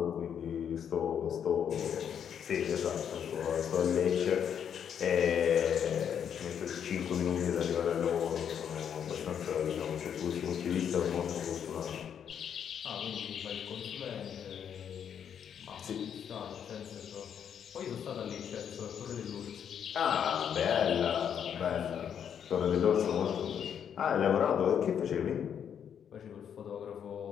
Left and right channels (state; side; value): quieter; right; 8.4 dB